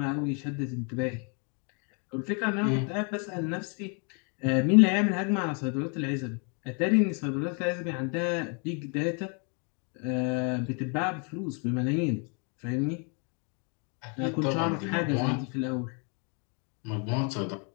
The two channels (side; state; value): right; quieter; 37.1 dB